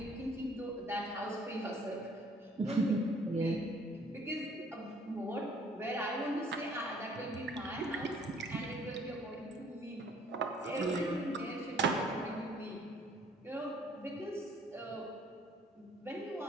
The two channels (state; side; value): normal; both; correlation 0.59